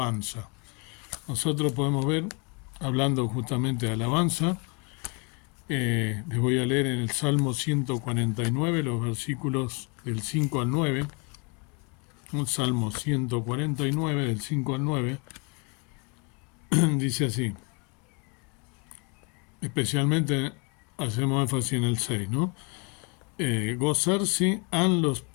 Nosotros podemos ver, hablando justamente de alabanza, les voy a leer en el Salmo 149, los versículos del 5 al 9, un Salmo 149, del 5 al 9, dice así, especialmente hacemos énfasis en el 6, ¿no? Gozarse han los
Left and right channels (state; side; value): quieter; right; 32.8 dB